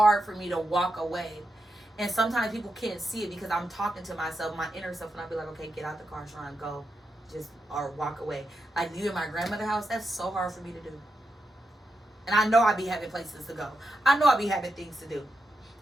for me to walk away. And sometimes people can't see it because I'm talking to myself, my inner self, and I be like, okay, get out the car, Sharon, go. Just, or walk away. Like, you in my grandmother's house, that's so hard for me to do. And I know I be having places to go. I know I be having things to do.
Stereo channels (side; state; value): both; normal; correlation 0.87